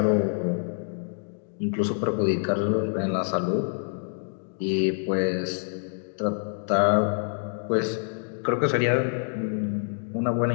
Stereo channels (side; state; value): right; silent; digital silence